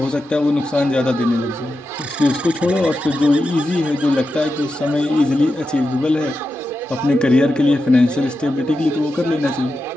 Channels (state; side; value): normal; both; correlation 0.90